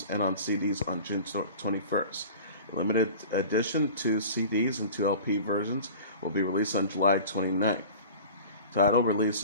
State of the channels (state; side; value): inverted; both; correlation -0.40